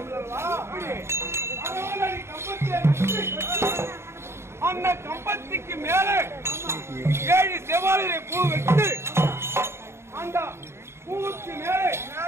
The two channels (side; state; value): left; late; 0.13 ms